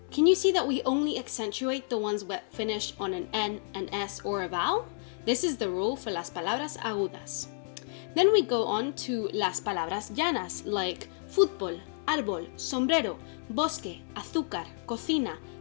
Can you see that we only accentuate the ones that finish on an N, an S, or a vowel? This is the rule for las palabras agudas. Then we go on to las palabras llanas, like fútbol, árbol, sombrero, bosque, azúcar, cocina,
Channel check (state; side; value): silent; right; digital silence